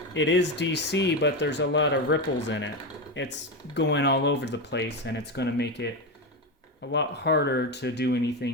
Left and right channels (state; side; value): normal; both; correlation 0.14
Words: it is DC, but there's a lot of ripples in it. It's going all over the place, and it's going to make it a lot harder to do anything